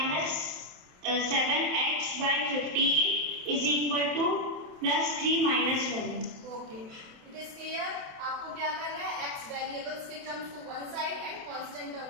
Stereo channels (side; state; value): left; late; 27 ms